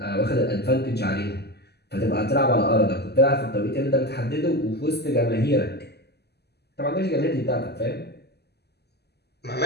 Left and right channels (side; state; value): right; late; 0.48 ms